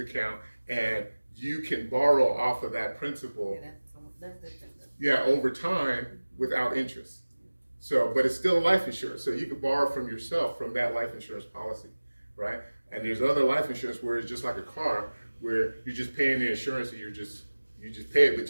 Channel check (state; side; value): inverted; both; correlation -1.00